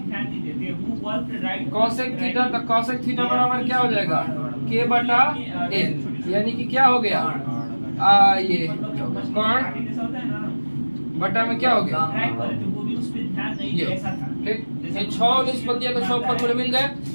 कॉसेक थीटा तो कॉसेक थीटा बराबर क्या हो जाएगा के बटा एल, यानी कि क्या हो गया ये कोण बटा में क्या हो गया ये, ठीक। ये 6 निष्पत्तियों के 6 फॉर्मूले मिल गए,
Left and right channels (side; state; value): both; inverted; correlation -1.00